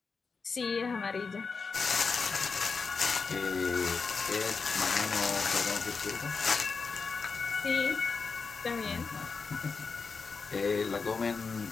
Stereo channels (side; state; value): right; quieter; 4.8 dB